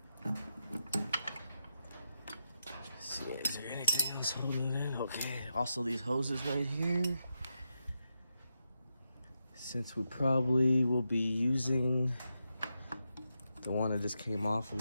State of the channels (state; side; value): inverted; both; correlation -0.87